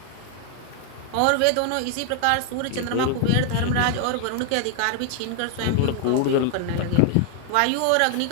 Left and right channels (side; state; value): both; different; correlation 0.00